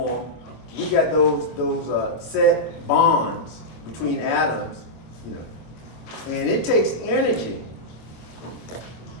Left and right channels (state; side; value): late; right; 25 ms